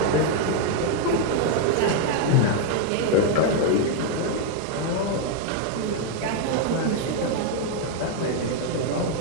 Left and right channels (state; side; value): different; both; correlation 0.00